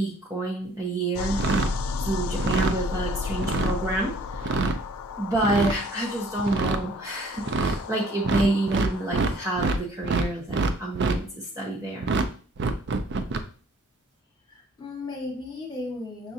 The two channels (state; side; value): normal; both; correlation 0.57